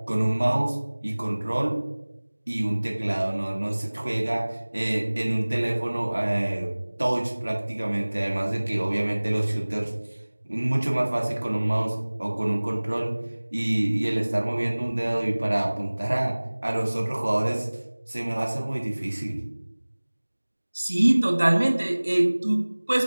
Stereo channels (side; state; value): both; inverted; correlation -1.00